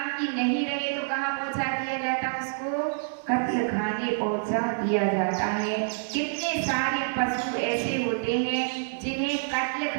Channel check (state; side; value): silent; left; digital silence